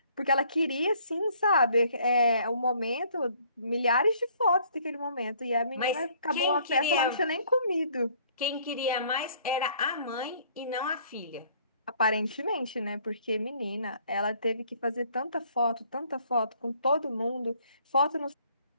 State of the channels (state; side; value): inverted; both; correlation -0.61